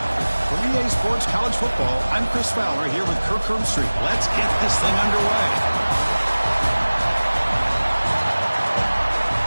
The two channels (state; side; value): inverted; both; correlation -1.00